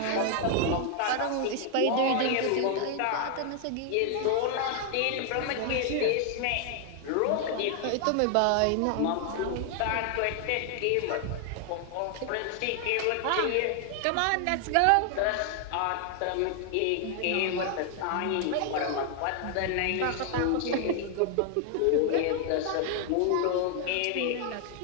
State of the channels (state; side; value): different; both; correlation 0.00